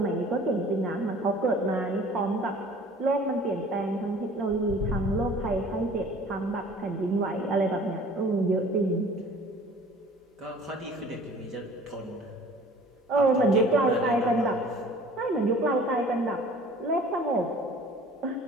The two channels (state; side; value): normal; both; correlation 0.48